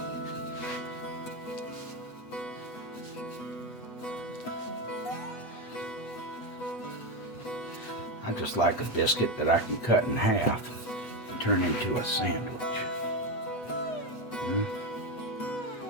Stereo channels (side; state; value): right; late; 8.1 ms